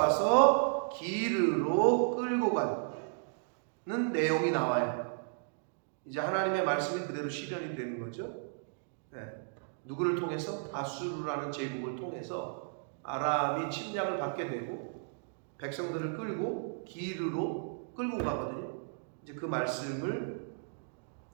기르로 끌고 가는 내용이 나와요. 이제 하나님의 말씀이 그대로 실현이 되는 거죠. 누구를 통해서? 아수르라는 제국을 통해서 아람이 침략을 받게 되고 백성들을 끌고 기르로 끌고 가거든요. 이제 이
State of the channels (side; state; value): left; silent; digital silence